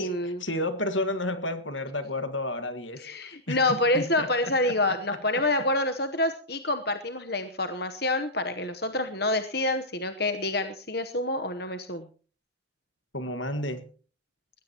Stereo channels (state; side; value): normal; both; correlation -0.12